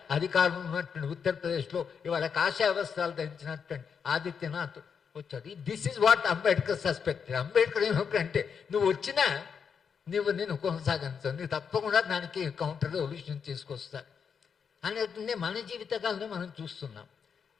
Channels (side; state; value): right; quieter; 6.6 dB